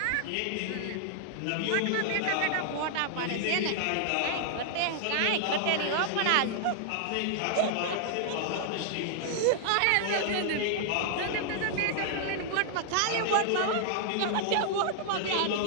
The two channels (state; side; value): different; both; correlation -0.01